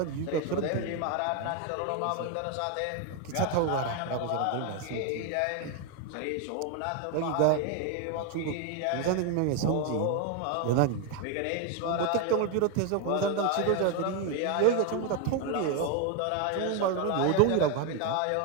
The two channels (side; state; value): both; different; correlation 0.01